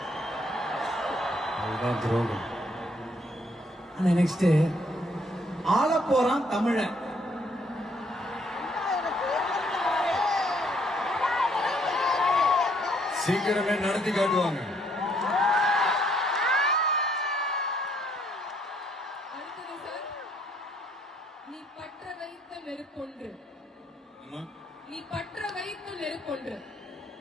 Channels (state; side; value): normal; both; correlation 0.68